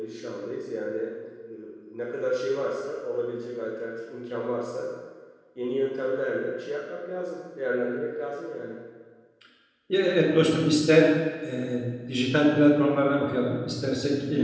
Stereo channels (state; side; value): identical; both; correlation 1.00